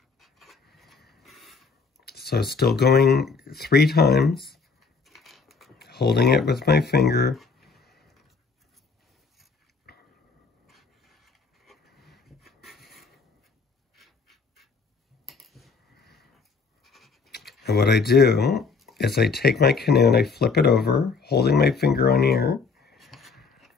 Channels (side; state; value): right; quieter; 4.7 dB